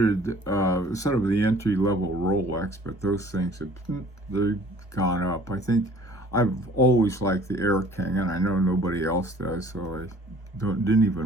sort of the entry-level Rolex, but those things they've gone up. I think I've always liked the Air King, and I know nobody else does, so I didn't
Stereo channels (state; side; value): normal; both; correlation 0.53